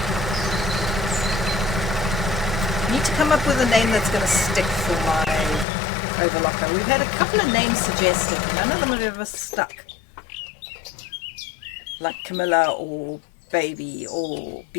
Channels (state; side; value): drops out; right; at 5.7 s